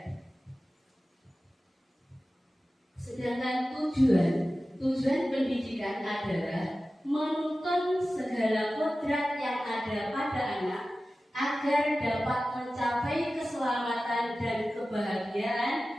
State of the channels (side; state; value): both; normal; correlation 0.95